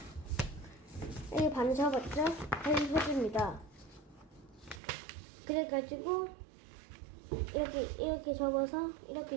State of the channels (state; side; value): drops out; left; at 4.8 s